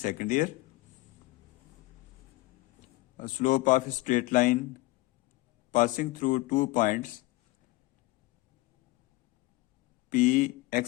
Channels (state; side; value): quieter; right; 20.0 dB